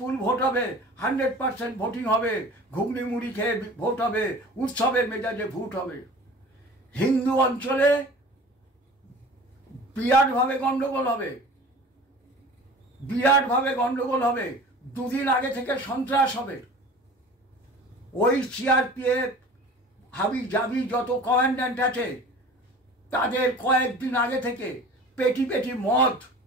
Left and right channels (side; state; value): both; normal; correlation 0.41